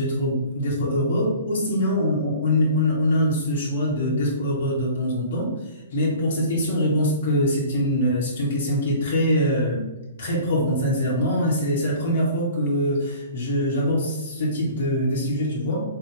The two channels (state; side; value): inverted; both; correlation -0.44